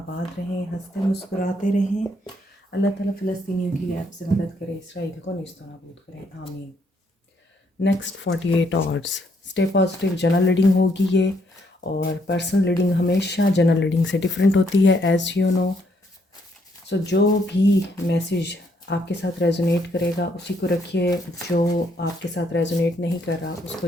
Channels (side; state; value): both; normal; correlation 0.72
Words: रहें, हंसते मुस्कुराते रहें। अल्लाह ताला फ़लस्तीनियों की ऐप से मदद करे, इसराइल को नेस्त नाबूद करें, आमीन। Next 48 hours stay positive general reading होगी ये, और पर्सनल रीडिंग हमेशा जनरल रीडिंग से डिफरेंट होती है, एज़ यू नो। सो जो भी मैसेज आपके साथ रेजोनेट करेगा उसी को रखिए, जो आपके साथ रेजोनेट नहीं कर रहा उसको